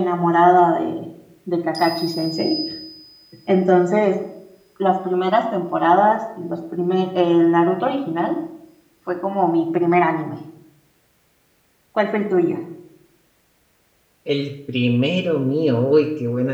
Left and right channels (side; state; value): both; identical; correlation 1.00